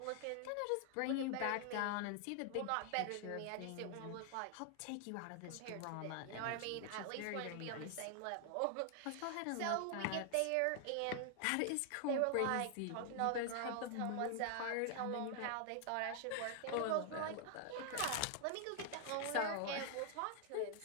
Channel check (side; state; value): both; different; correlation 0.00